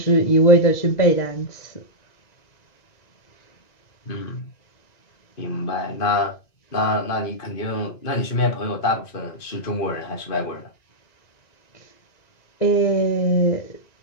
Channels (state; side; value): late; right; 2.5 ms